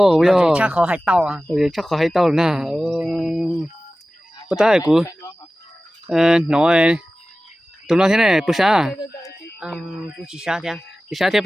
bây giờ Chắc khó hay tao à. rồi chắc có hay tao nè bữa tay của nói tụi nó thế này bữa sáng Cũng chỉ sáng thôi. chỉ sáng thế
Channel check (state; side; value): normal; both; correlation 0.96